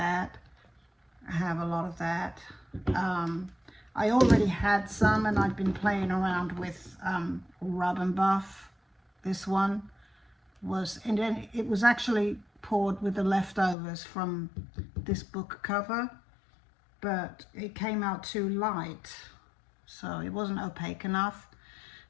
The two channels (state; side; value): drops out; right; at 13.8 s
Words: I have a lot of that. I already had some, and I've been playing around with Rub and Buff. This one was, and then it was actually poured with the leftovers from this book cover, but it came out too light, so it wasn't opaque enough.